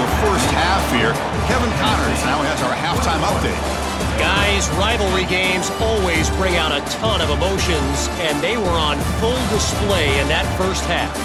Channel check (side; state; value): both; identical; correlation 1.00